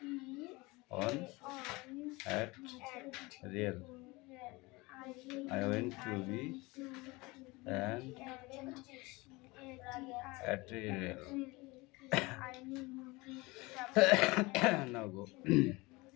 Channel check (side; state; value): right; quieter; 23.4 dB